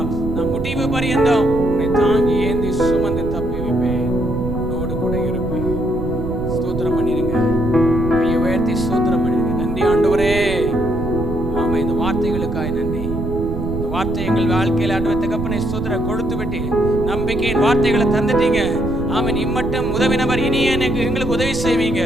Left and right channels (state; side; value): noise; right; rumble, 5 dB below the sound